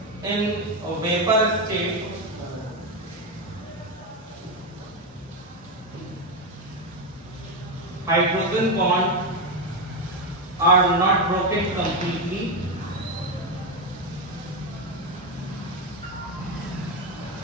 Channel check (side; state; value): both; normal; correlation 0.10